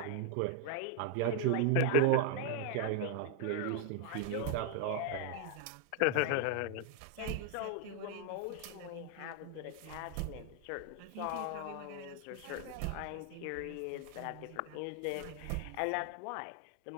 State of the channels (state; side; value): different; both; correlation 0.01